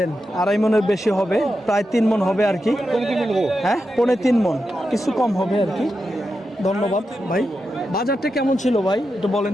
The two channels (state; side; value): normal; both; correlation 0.88